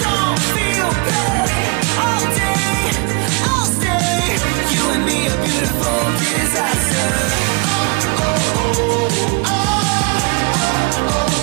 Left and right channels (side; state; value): left; quieter; 32.7 dB